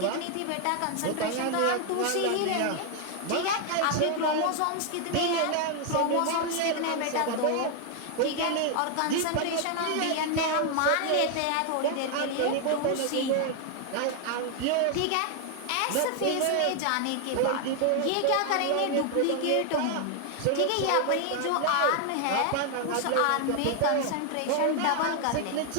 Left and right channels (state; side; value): different; both; correlation 0.00